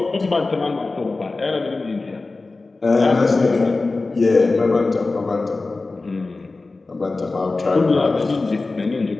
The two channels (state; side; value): quieter; right; 3.5 dB